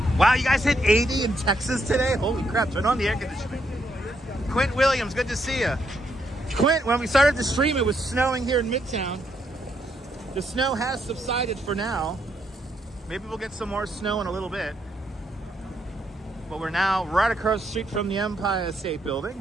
Wow, you guys hit 80 in Texas today? Holy crap, turn on the air conditioning. Quint Williams, good to see you. Quint, when we started the stream, it was snowing here in Midtown. The snow has subsided for now. Maybe we'll get some more snow in a little bit. But we're now right across the street from the Empire State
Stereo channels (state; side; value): normal; both; correlation 0.76